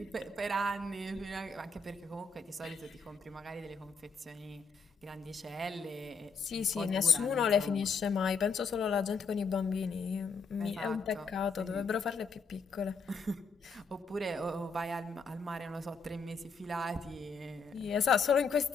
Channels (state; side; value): quieter; right; 4.6 dB